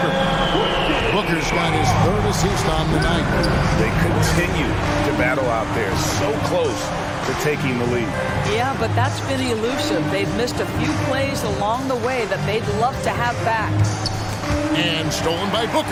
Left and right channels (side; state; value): both; identical; correlation 1.00